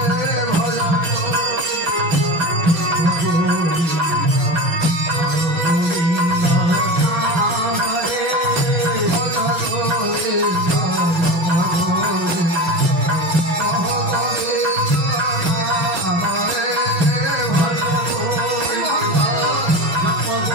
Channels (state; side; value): late; left; 5.7 ms